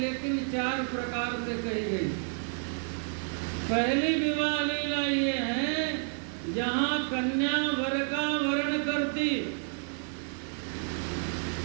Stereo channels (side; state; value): left; silent; 58 dB below the other